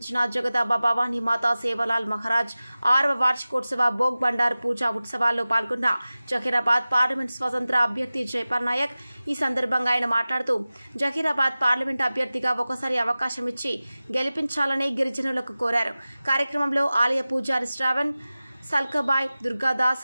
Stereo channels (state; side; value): inverted; both; correlation -0.97